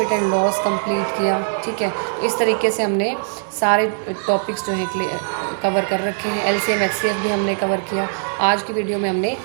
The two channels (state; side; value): silent; left; digital silence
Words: एंड लॉस कंप्लीट किया, ठीक है। तो इस तरीके से हमने सारे टॉपिक्स जो हैं कवर कर रखे हैं। एलसीएम एचसीएफ भी हमने कवर किया। आज की वीडियो में हमने